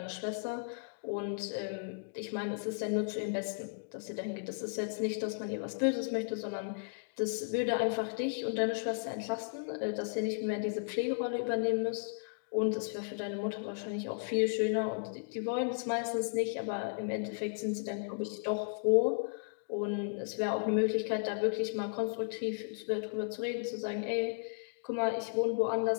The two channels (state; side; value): silent; right; digital silence